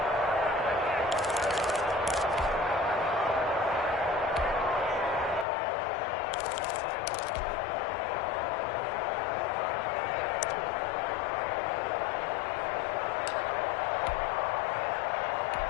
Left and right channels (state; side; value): drops out; right; at 5.5 s